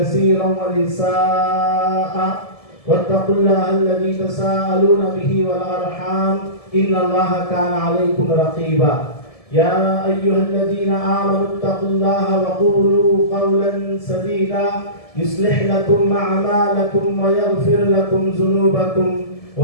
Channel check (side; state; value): right; late; 1.7 ms